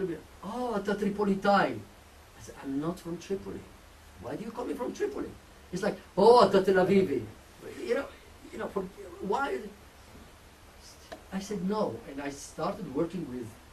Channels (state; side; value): identical; both; correlation 1.00